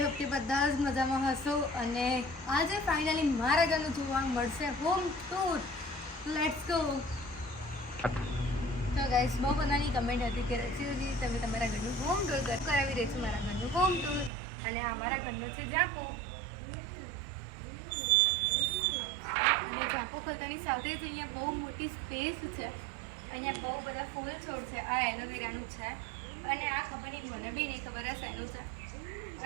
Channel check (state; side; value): drops out; left; at 14.3 s